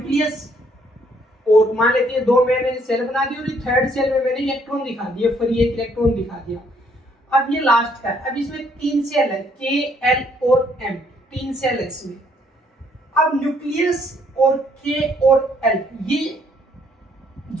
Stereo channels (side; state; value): both; normal; correlation 0.67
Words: और मान लेते हैं दो मैंने सेल बना दी और थर्ड सेल में मैंने इलेक्ट्रॉन दिखा दिया, फ्री एक इलेक्ट्रॉन दिखा दिया। अब ये लास्ट का है, अब इसमें तीन सेल है, के, एल और एम, तीन सेल है इसमें। अब न्यूक्लियस और के और एल, ये